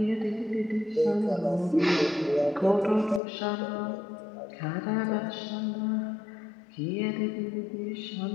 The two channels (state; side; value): drops out; right; at 3.2 s